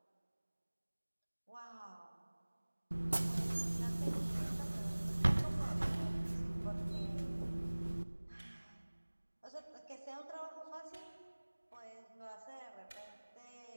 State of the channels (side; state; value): both; inverted; correlation -1.00